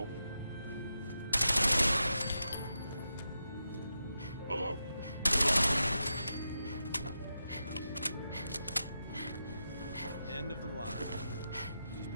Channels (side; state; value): both; inverted; correlation -0.88